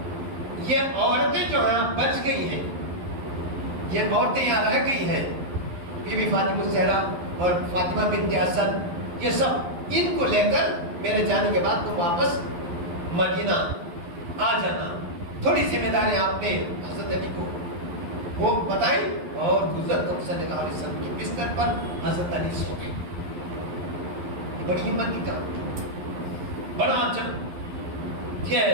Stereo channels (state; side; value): late; left; 11 ms